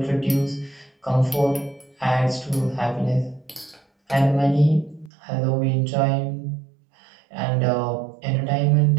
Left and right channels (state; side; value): drops out; left; at 5.1 s